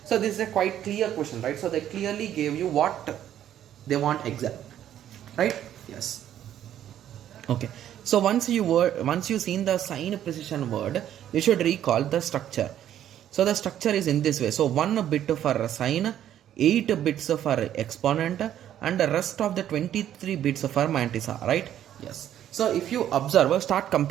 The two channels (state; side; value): quieter; left; 11.0 dB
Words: so this is a quite clear question, right? So they clearly gave you what they want exact, right? Yes. Okay, so once you seen the sign precision word, you should recall the structure. So the structure is in this way. So 1 bit for sign, 8 bits for exponent, and the rest of the 23 bits for mantissa, right? Yes. So if you observe, start